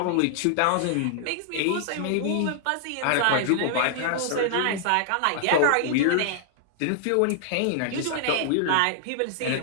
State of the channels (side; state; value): both; different; correlation -0.01